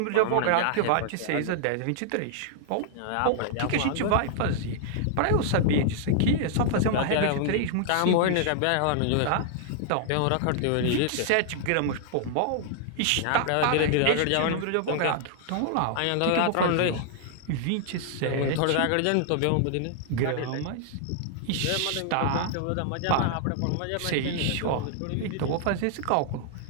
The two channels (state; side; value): different; both; correlation -0.01